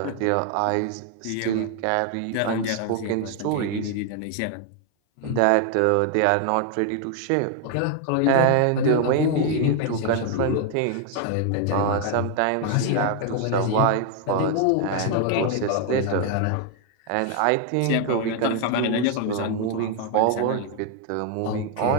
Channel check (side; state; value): both; different; correlation 0.00